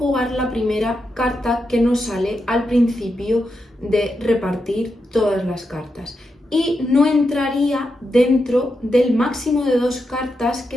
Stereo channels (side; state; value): both; normal; correlation 0.86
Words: la primera carta que nos sale al principio de repartir todas las cartas y no entraría dentro del máximo de 2 cartas